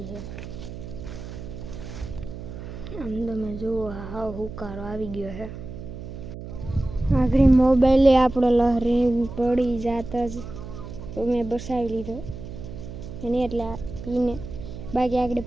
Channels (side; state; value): right; noise; hum, 11 dB below the sound